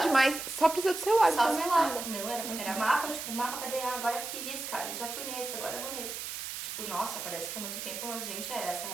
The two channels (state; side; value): noise; right; hiss, 6 dB below the sound